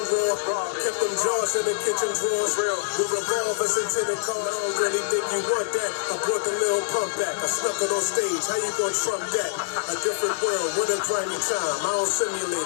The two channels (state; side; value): silent; right; digital silence